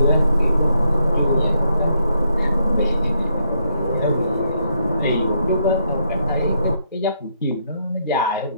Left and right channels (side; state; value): both; inverted; correlation -0.76